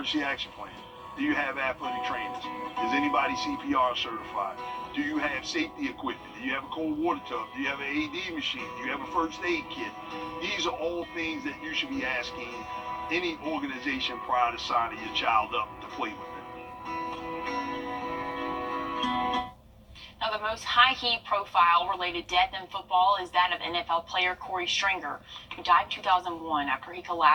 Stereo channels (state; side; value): identical; both; correlation 1.00